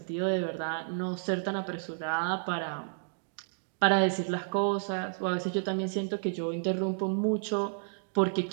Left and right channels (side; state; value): left; silent; digital silence